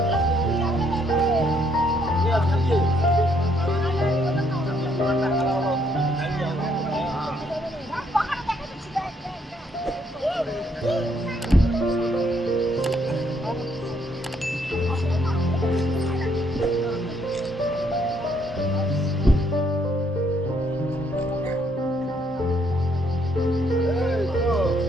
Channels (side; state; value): both; normal; correlation 0.70